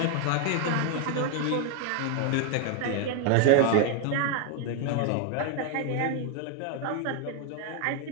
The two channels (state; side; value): different; both; correlation 0.01